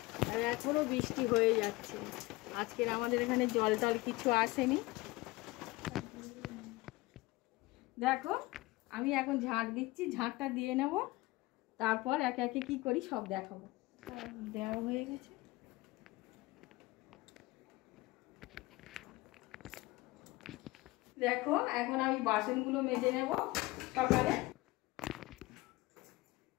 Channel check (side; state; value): right; quieter; 21.0 dB